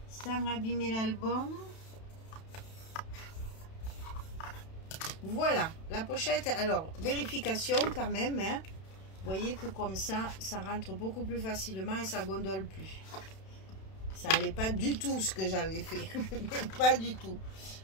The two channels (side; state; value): right; late; 31 ms